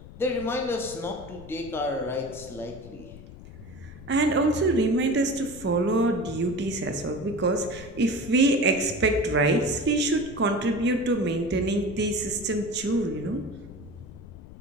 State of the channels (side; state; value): left; noise; rumble, 16 dB below the sound